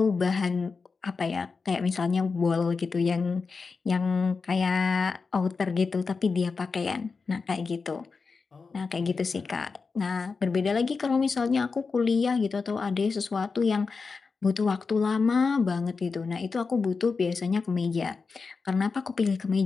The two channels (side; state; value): right; quieter; 4.7 dB